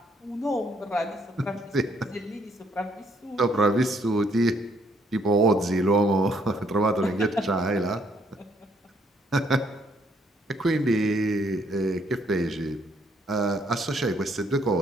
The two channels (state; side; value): normal; both; correlation 0.69